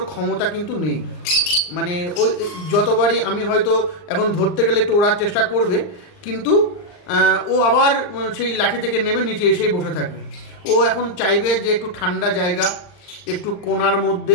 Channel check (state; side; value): late; right; 39 ms